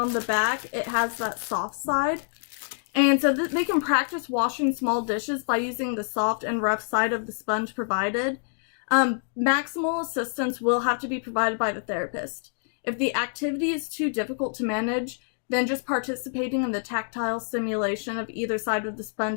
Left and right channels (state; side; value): silent; right; digital silence